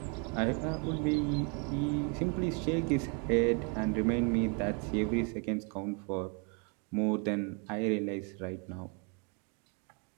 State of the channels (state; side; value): quieter; left; 36.0 dB